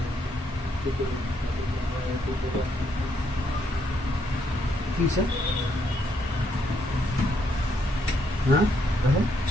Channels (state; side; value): normal; both; correlation 0.74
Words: কি স্যার? হ্যাঁ, দেখো